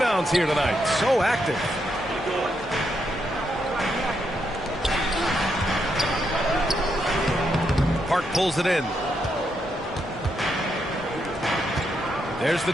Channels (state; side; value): normal; both; correlation 0.80